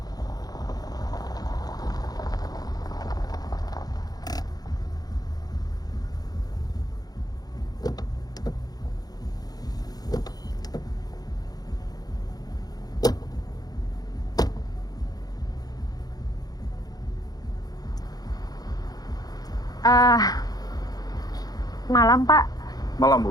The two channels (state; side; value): late; right; 0.19 ms